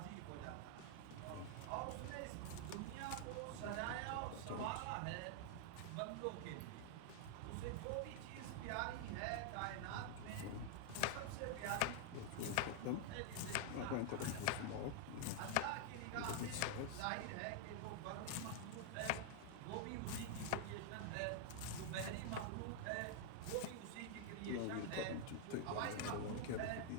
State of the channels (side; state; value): both; different; correlation 0.00